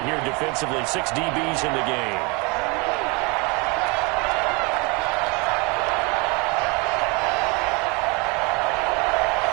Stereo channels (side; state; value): left; quieter; 29.1 dB